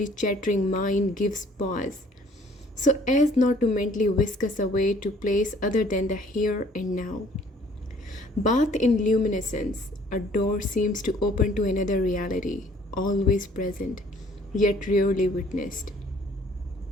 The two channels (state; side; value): normal; both; correlation 0.57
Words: chattering mind gives pause, so as not to mentally whisk us away to place other than the here and now. Bathed in luminescence, a door seems to open to another reality, always present, yet rarely witnessed.